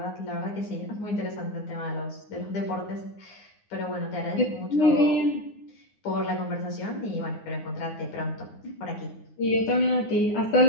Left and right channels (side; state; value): right; late; 9.6 ms